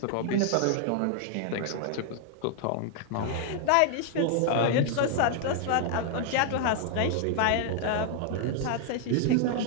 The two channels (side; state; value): both; different; correlation 0.00